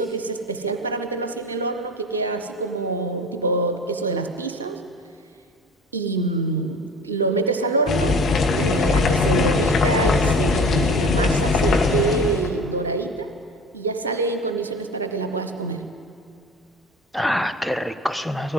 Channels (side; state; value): both; normal; correlation 0.38